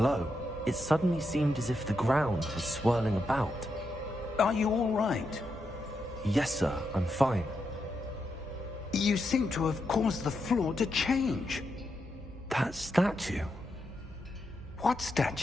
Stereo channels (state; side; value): normal; both; correlation 0.84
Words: it suddenly seemed as if the ground was swirling about. Are you all right? Yes, sir, I'm fine. You seem to have caused the floor to change. That statue? What